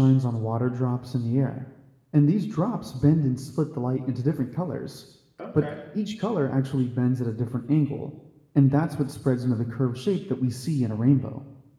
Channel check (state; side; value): identical; both; correlation 1.00